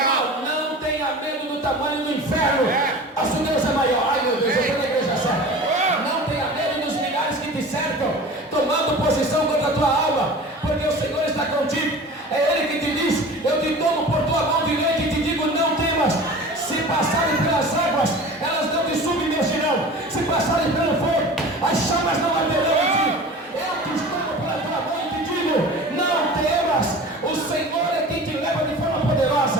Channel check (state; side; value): normal; both; correlation 0.38